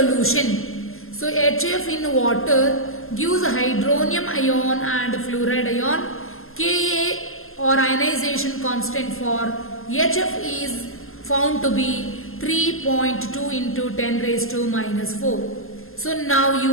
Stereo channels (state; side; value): late; right; 0.61 ms